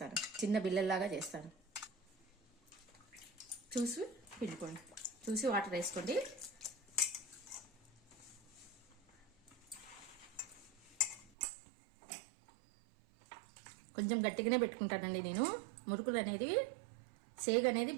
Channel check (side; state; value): left; drops out; at 11.3 s